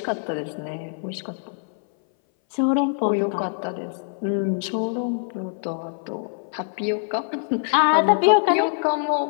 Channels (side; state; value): right; silent; 59 dB below the other